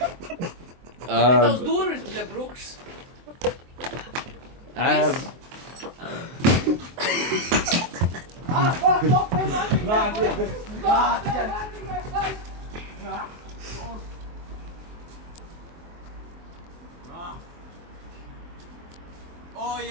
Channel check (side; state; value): left; late; 24 ms